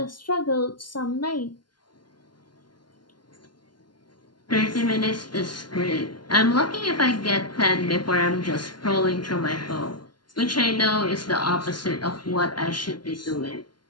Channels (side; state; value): right; late; 0.71 ms